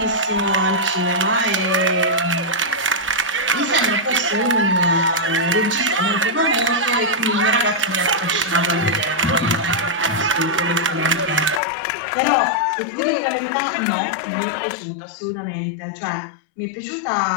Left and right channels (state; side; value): drops out; right; at 11.6 s